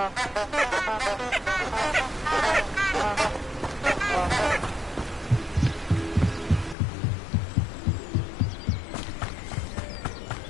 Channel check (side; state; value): right; drops out; at 6.8 s